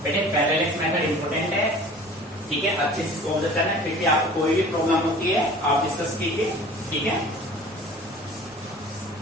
बेटे पैरेलल मेथड इंपॉर्टेंट है, ठीक है, अच्छे से इसको ऑब्जर्व करना है। फिर भी आपको कोई भी प्रॉब्लम होती है आप डिस्कस कीजिए, ठीक है।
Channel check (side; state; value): both; normal; correlation 0.45